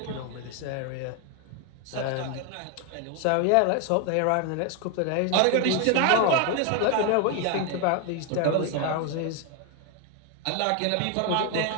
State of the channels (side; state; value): both; different; correlation 0.01